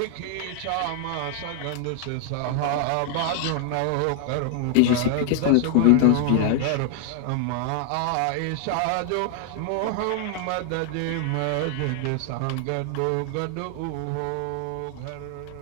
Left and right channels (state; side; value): different; both; correlation 0.00